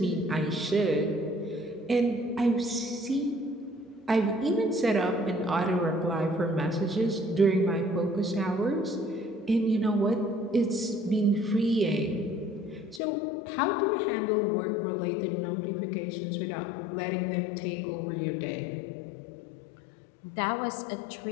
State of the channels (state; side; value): drops out; right; at 13.0 s